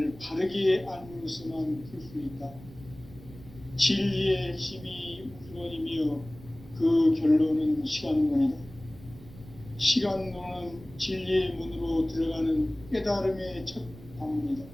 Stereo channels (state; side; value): noise; right; rumble, 18 dB below the sound